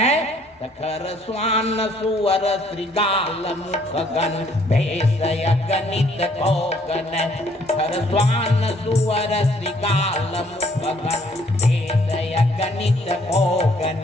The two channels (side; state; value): both; normal; correlation 0.64